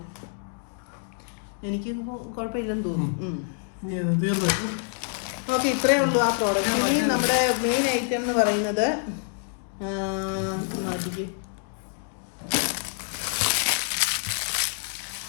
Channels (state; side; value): silent; right; 57 dB below the other